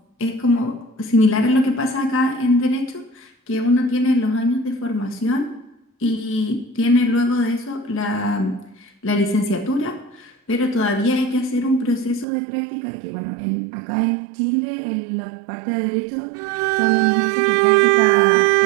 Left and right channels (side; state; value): left; drops out; at 12.2 s